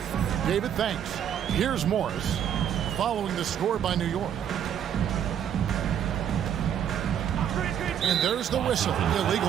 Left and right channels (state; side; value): quieter; left; 9.3 dB